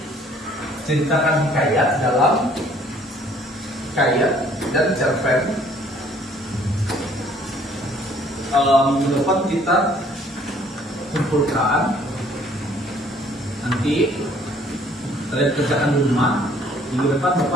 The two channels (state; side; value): normal; both; correlation 0.59